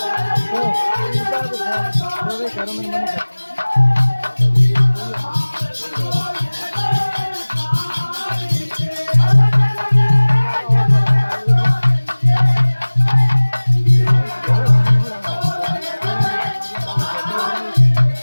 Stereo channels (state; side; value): inverted; both; correlation -1.00